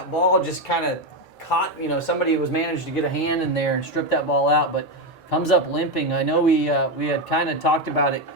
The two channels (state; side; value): normal; both; correlation 0.09